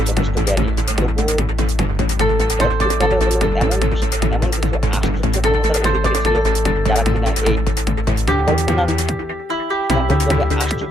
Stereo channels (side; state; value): both; normal; correlation 0.79